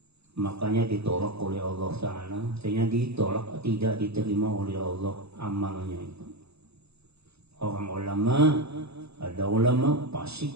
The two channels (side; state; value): left; late; 0.79 ms